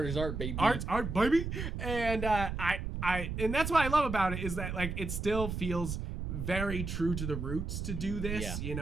is art, baby. Art's art, baby. And and that's what I love about it, is that like it still feels very true to the roots to do this. You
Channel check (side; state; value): right; noise; rumble, 4 dB below the sound